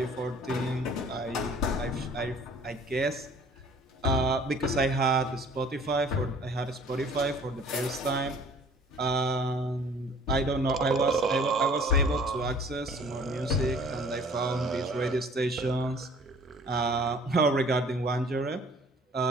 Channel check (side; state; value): both; normal; correlation 0.52